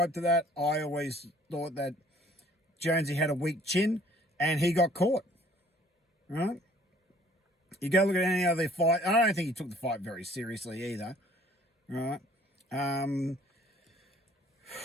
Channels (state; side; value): normal; both; correlation 0.57